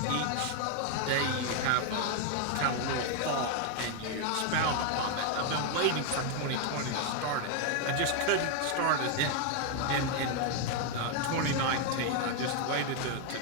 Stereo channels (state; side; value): different; both; correlation 0.01